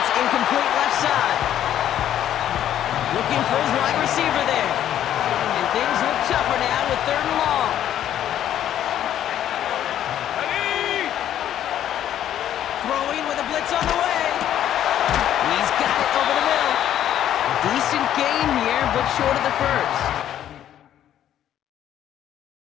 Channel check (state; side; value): quieter; right; 11.1 dB